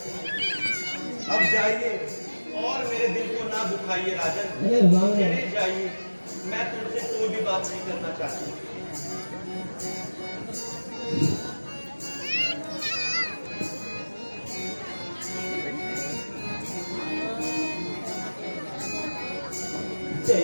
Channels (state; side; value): inverted; both; correlation -1.00